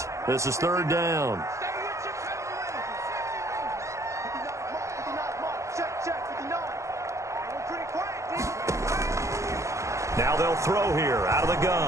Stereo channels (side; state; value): left; late; 0.15 ms